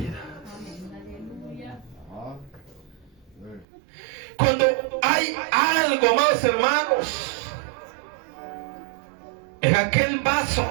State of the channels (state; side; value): drops out; left; at 3.7 s